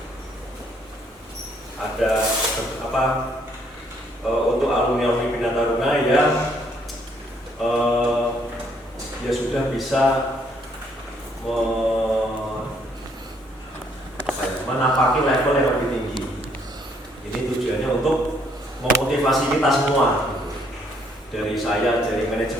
ada untuk alumni Bina Taruna yang ya sudah bisa menapaki level yang lebih tinggi. Ini tujuannya untuk memotivasi kita semua, dari saya, dari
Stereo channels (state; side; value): normal; both; correlation 0.68